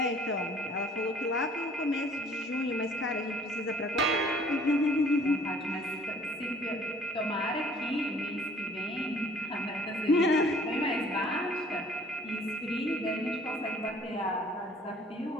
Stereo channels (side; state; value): both; normal; correlation 0.54